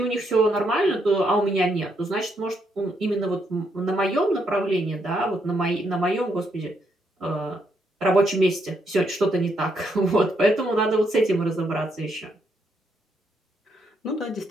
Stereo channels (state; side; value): normal; both; correlation 0.76